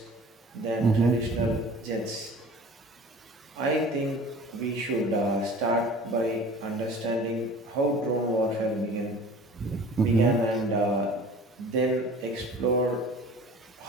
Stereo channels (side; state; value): both; normal; correlation 0.44